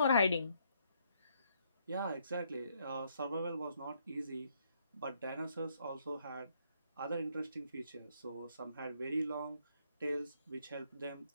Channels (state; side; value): inverted; both; correlation -0.71